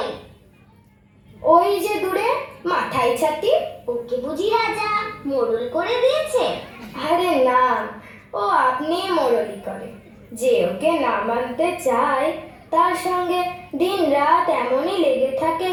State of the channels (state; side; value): identical; both; correlation 1.00